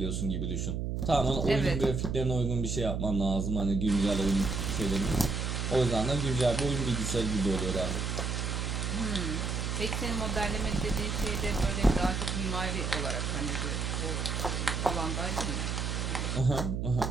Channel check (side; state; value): right; noise; hum, 1 dB below the sound